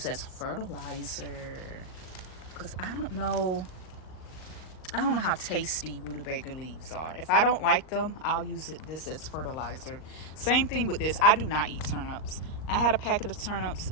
as fertilizer. Because I don't know how tasty rutabaga leaves are. If I don't like them, I'll use this as fertilizer. Same thing with this. I do not eat turnips. I had a packet of turnips.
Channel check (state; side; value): late; right; 38 ms